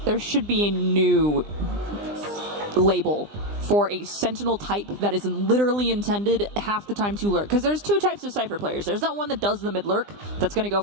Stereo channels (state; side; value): late; left; 20 ms